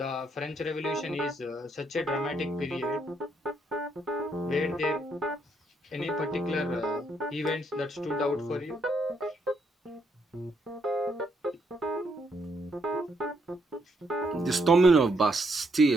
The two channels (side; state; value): both; normal; correlation 0.75